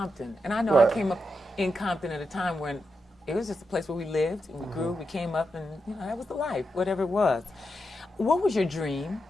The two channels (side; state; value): both; normal; correlation 0.86